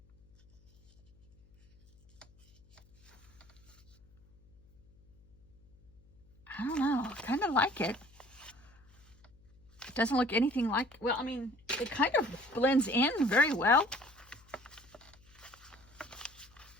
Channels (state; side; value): noise; left; hum, 28 dB below the sound